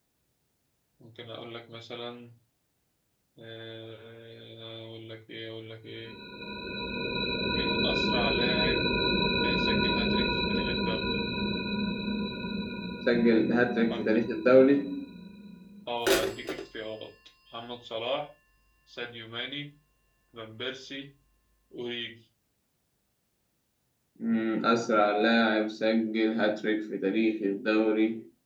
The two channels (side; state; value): both; identical; correlation 1.00